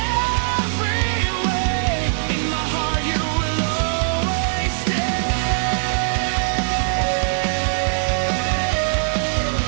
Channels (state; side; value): silent; left; digital silence